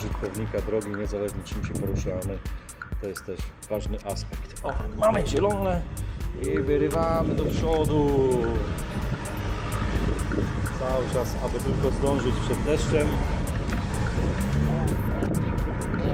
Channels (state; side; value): identical; both; correlation 1.00